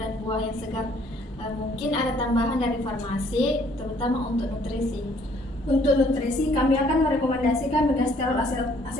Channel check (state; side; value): normal; both; correlation 0.62